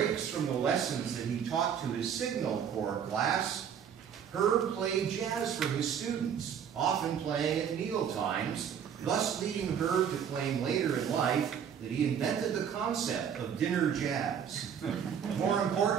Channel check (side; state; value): left; quieter; 8.1 dB